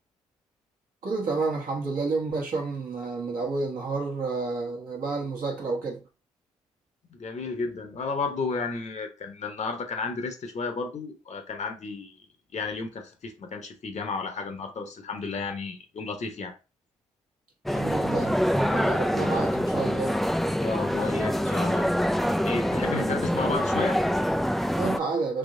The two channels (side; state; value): both; normal; correlation 0.79